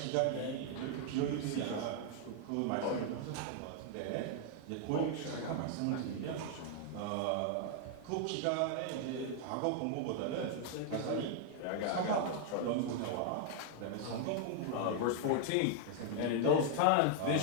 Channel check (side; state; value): both; different; correlation 0.00